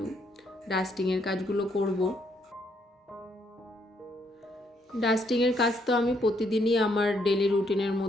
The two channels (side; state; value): both; normal; correlation 0.72